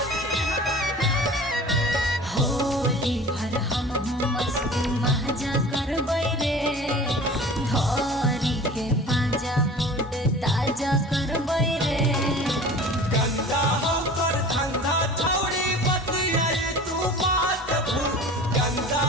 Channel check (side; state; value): both; normal; correlation 0.40